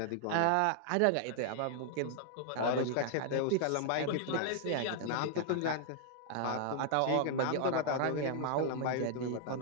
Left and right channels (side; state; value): both; different; correlation 0.00